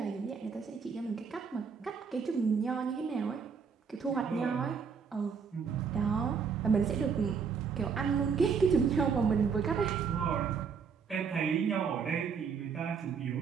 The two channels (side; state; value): left; quieter; 6.1 dB